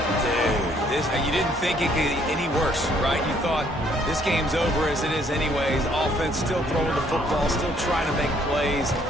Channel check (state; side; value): normal; both; correlation 0.65